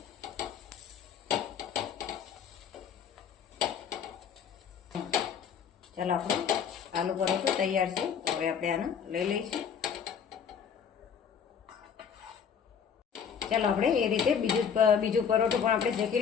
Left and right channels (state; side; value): quieter; right; 7.3 dB